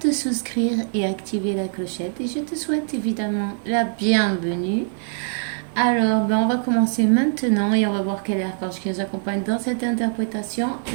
souscrire et activer la clochette et je te souhaite évidemment la bienvenue. Alors, on va commencer maintenant et on va voir quel archange qui nous accompagne dans cette interprétation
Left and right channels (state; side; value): silent; left; digital silence